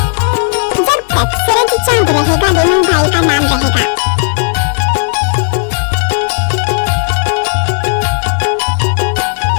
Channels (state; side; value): silent; right; digital silence